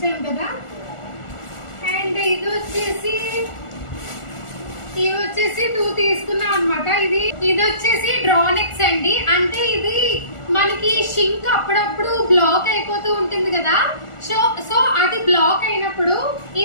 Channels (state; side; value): late; right; 1.4 ms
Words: కదా. అండ్ ఇది వచ్చేసి 2 తీసుకున్నాం అనమాట. ఇది వచ్చేసి డ్రానెక్స్ అండి. అంటే ఇది మనకి షింక్ అప్పుడప్పుడు బ్లాక్ అయిపోతూ ఉంటుంది కదా. సో అది బ్లాక్ అయినప్పుడు